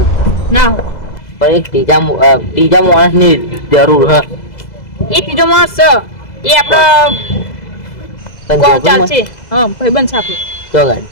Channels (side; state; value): right; late; 2.0 ms